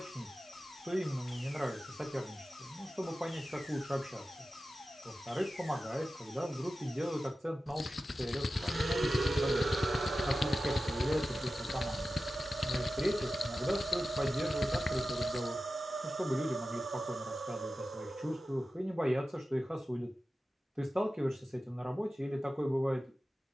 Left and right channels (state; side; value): normal; both; correlation 0.94